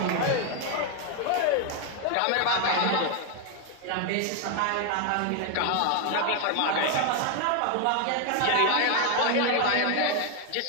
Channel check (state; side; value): different; both; correlation 0.01